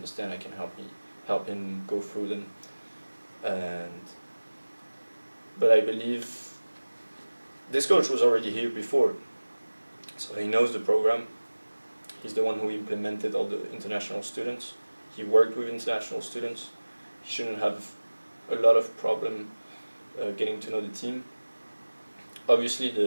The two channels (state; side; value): inverted; both; correlation -1.00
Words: I can help him go through them. But I believe this coach was already here before, so he knows the program. He's the one who implemented all the international students. He worked with international students. He shouldn't have a lot of problem getting to know the team. Obviously,